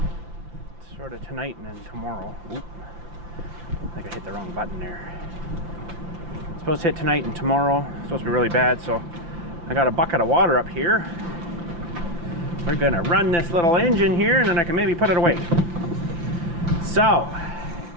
sort of tonight and then tomorrow. Oop. I think I hit the wrong button there. It's supposed to hit tonight and tomorrow. It's supposed to be really bad, so I got a bucket of water up here. We're gonna run this little engine here and then I can maybe put it away. So,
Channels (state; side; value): late; left; 5.9 ms